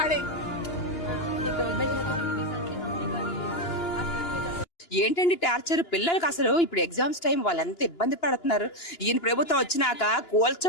ఏంటండి టార్చర్ పిల్లలకి? అసలు ఇప్పుడు ఎగ్జామ్స్ టైం వాళ్ళు ఎంత ఇబ్బంది పడుతున్నారు. ఈయన ప్రభుత్వం వచ్చినాక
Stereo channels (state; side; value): late; right; 2.9 ms